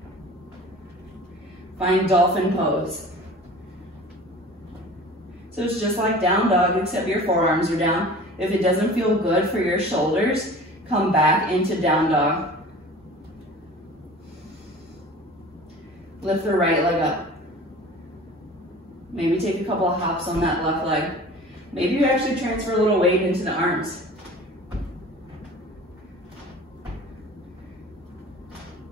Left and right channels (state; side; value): normal; both; correlation 0.42